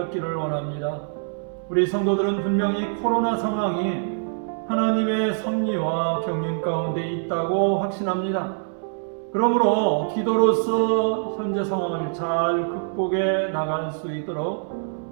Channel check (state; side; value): silent; left; 62 dB below the other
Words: 원합니다. 우리 성도들은 분명히 코로나 상황이 하나님의 섭리와 경륜 가운데 있다고 확신합니다. 그러므로 기도로서 현재 상황을 잘 극복해 나갈 수